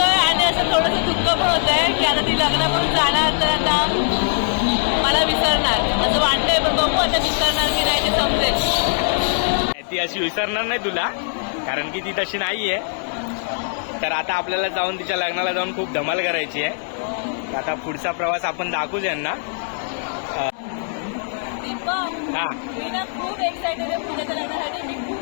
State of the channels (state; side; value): silent; right; 62 dB below the other